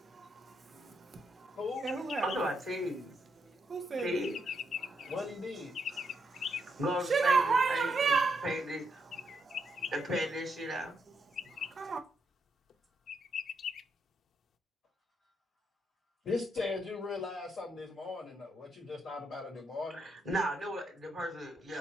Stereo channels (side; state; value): both; normal; correlation 0.79